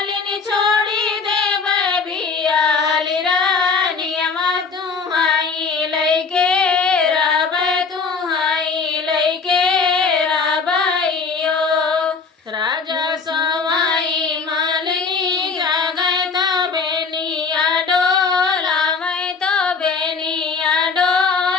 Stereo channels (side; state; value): right; quieter; 5.0 dB